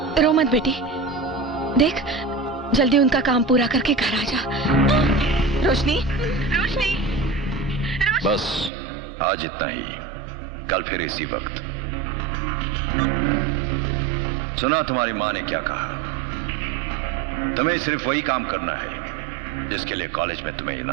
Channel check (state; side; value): drops out; left; at 8.7 s